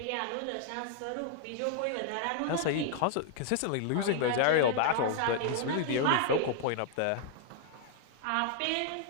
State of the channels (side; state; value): both; different; correlation 0.00